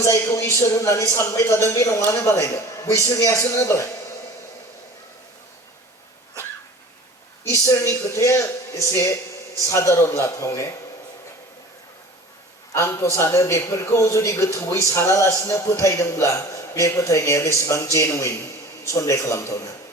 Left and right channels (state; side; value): normal; both; correlation 0.42